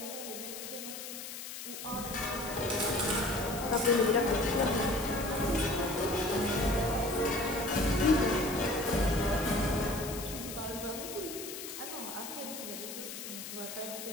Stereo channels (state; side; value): noise; left; hiss, 9 dB below the sound